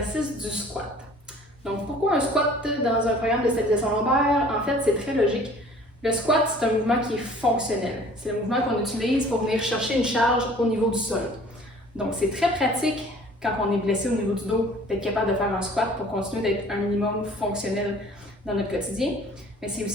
du squat. Donc, pourquoi un squat dans un programme de stabilisation lombaire? En fait, c'est très logique. Le squat, c'est un mouvement qui est fonctionnel. C'est le mouvement qu'on utilise pour venir chercher une charge au niveau du sol. Donc, c'est très pratique quand on est blessé au niveau du dos d'être capable de faire un squat pour continuer d'être un minimum fonctionnel dans notre quotidien. Mais c'est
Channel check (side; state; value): both; normal; correlation 0.51